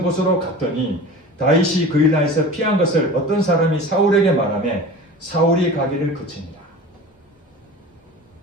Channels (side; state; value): both; normal; correlation 0.37